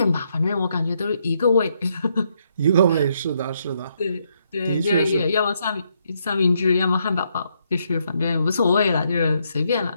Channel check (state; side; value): inverted; both; correlation -0.76